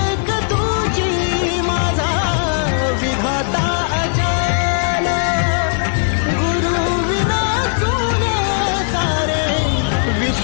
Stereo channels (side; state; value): right; silent; digital silence